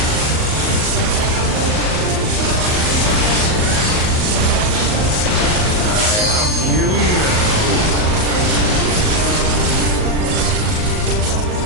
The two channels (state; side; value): late; left; 38 ms